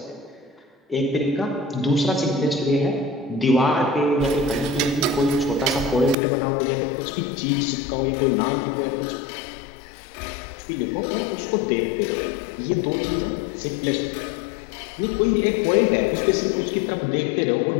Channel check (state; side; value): drops out; right; at 6.2 s